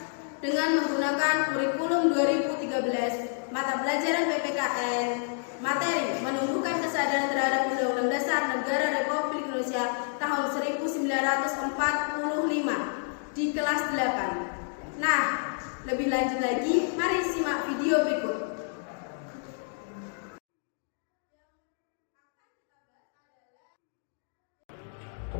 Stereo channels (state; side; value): silent; right; 58 dB below the other